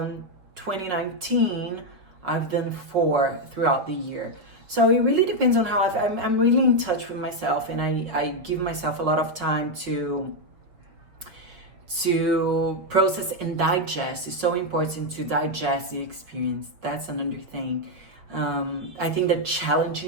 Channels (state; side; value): late; left; 5.2 ms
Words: 2019, I've done 4 throughout the year. So it really depends on how I'm really in touch with myself, and I give myself a lot of time to process and digest. It's so important to digest the experience. That's another thing. I think the